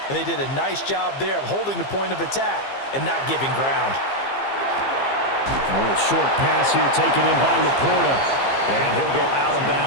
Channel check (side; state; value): right; late; 15 ms